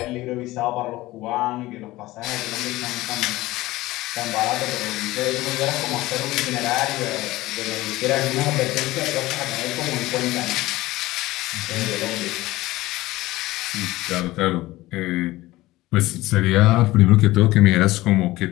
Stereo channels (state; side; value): quieter; right; 18.1 dB